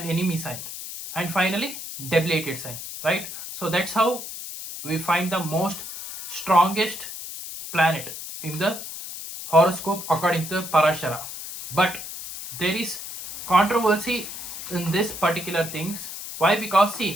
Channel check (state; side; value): noise; left; hiss, 9 dB below the sound